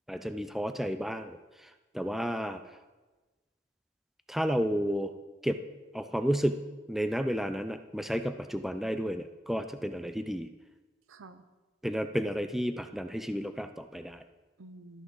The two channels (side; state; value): both; normal; correlation 0.92